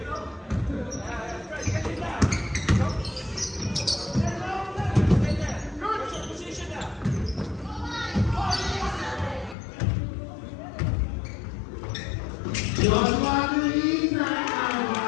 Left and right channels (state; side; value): drops out; right; at 9.6 s